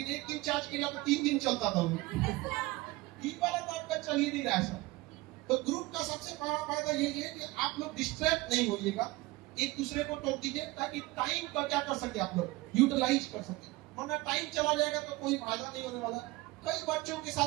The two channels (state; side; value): quieter; left; 20.5 dB